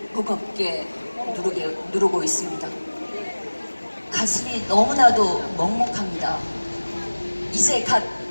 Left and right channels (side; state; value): both; inverted; correlation -1.00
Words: 무겁게 누르고 있습니다. 가슴이 너무나도 먹먹합니다. 이제 갓